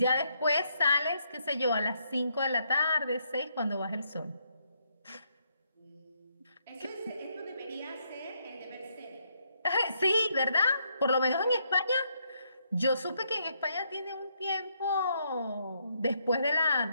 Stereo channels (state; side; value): inverted; both; correlation -0.75